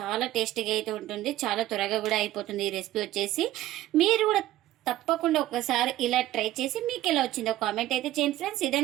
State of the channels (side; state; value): left; quieter; 14.7 dB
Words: టేస్టీగా అయితే ఉంటుంది. చాలా త్వరగా కూడా అయిపోతుంది ఈ రెసిపీ వచ్చేసి. మీరు కూడా తప్పకుండా ఒకసారి ఇలా ట్రై చేసి మీకు ఎలా వచ్చిందో కామెంట్ అయితే చేయండి ఫ్రెండ్స్.